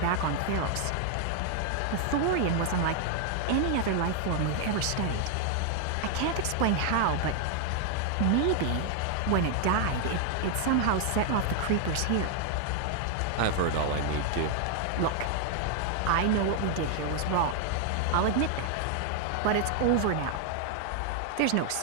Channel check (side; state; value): both; different; correlation 0.00